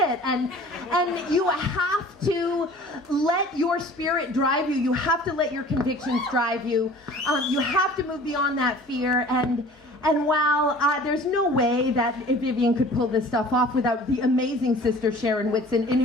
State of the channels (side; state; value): both; normal; correlation 0.46